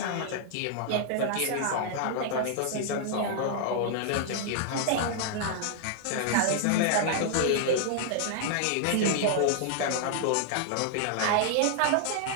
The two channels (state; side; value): different; both; correlation -0.01